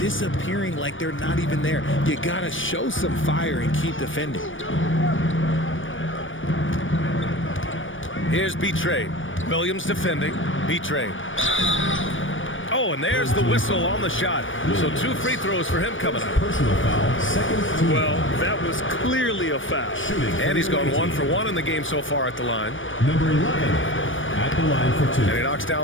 like they're not even there. You gotta show some fire and keep defending. Here's B-Trade. Williams defending. B-Trade. Oh, and there's the whistle on the shot. So 2 free throws for him coming up. Personal foul, second team. Well, that was clearly a foul. Shooting. And he's gone 1 for 1 in the game so far at the line. Number 11 at the line for 2. And he knocks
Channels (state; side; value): late; right; 0.57 ms